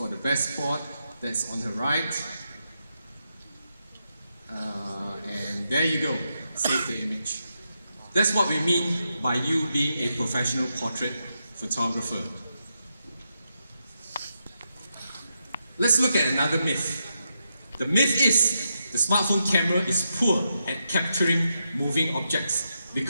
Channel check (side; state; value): both; inverted; correlation -0.84